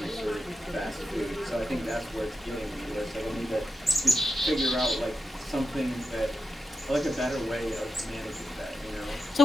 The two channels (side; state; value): both; normal; correlation 0.89